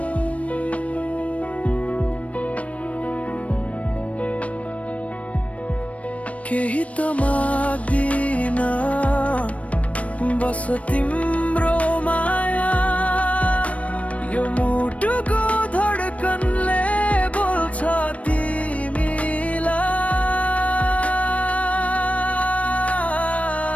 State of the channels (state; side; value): late; right; 0.065 ms